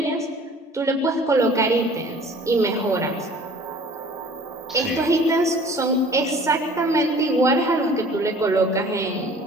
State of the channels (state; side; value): normal; both; correlation 0.49